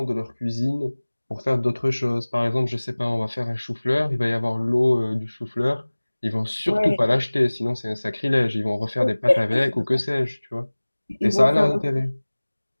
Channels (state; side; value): inverted; both; correlation -1.00